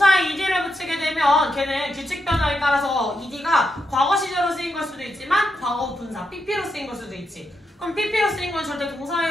ed를 붙이게 되면 걔는 규칙 변화에 따라서 ed가 과거 시제로 쓰인 걸 수도 있지만 과거 분사 pp로 쓰인 걸 수도 있지. 그럼 pp로 쓰인 건 절대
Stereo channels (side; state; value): both; normal; correlation 0.83